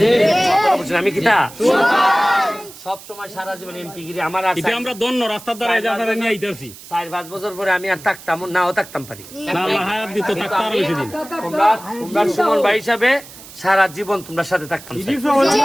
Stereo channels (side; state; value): right; noise; hiss, 18 dB below the sound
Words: আমি কিতা সব সময় সারা জীবন এমপি গিরি আমার আছে, এটা আমরা দন্ন রাস্তার দ্বারা এই জায়গাটা নিয়ে আইতাছি। 4-5 বছর পরে আমি আর থাকতাম নাও থাকতাম পারি না, আল্লাহ হায়াত দিত থাকতে আরো বেশি দিন। তোমরা সুমন ভাই হিসাবে সারা জীবন তোমরা সাথে থাকতাম।